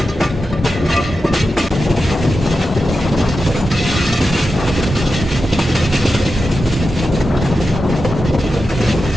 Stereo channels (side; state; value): both; normal; correlation 0.91